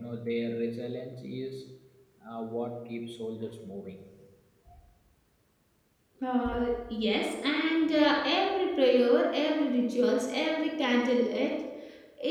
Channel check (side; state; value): both; identical; correlation 1.00